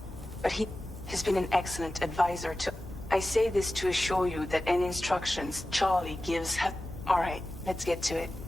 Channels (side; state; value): both; normal; correlation 0.94